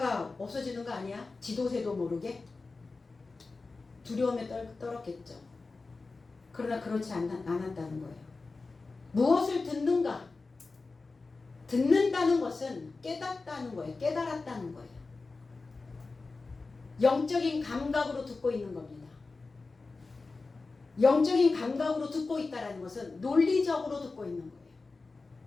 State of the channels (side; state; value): right; quieter; 3.8 dB